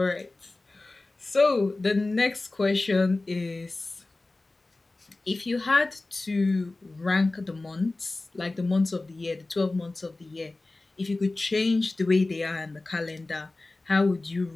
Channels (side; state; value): right; quieter; 3.1 dB